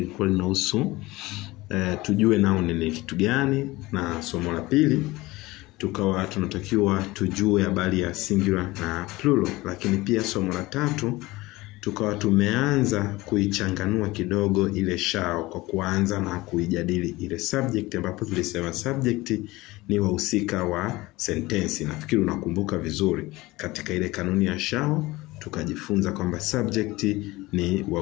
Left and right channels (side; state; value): right; quieter; 20.2 dB